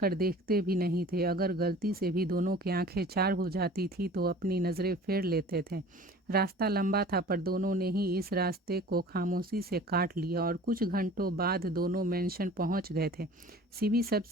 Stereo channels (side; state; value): both; normal; correlation 0.44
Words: देखते भी नहीं थे। अगर गलती से भी दोनों की आंखें चार हो जाती थी तो अपनी नज़रें फेर लेते थे। रास्ता लंबा था, पर दोनों ने ही इस रास्ते को खामोशी से काट लिया और कुछ घंटों बाद दोनों मेंशन पहुंच गए थे। सीबी